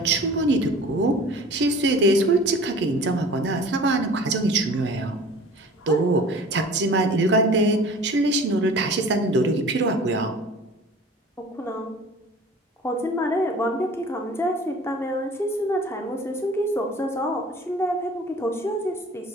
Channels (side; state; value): both; normal; correlation 0.44